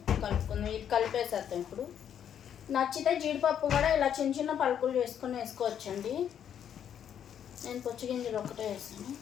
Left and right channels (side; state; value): right; quieter; 9.1 dB